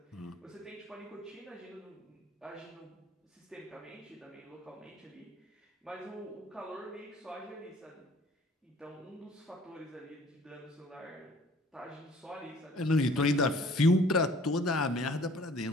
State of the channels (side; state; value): both; normal; correlation 0.54